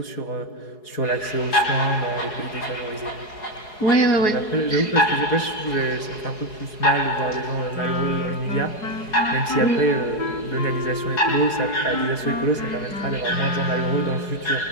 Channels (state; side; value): late; right; 4.7 ms